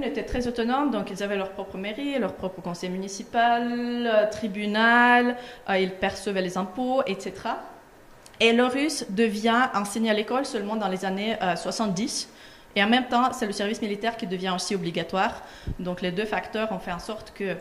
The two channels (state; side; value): identical; both; correlation 1.00